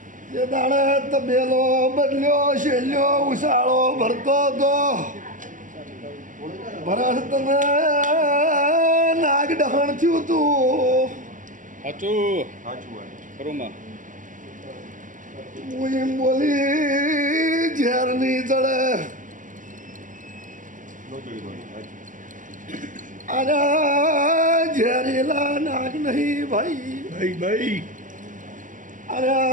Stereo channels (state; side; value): late; left; 0.38 ms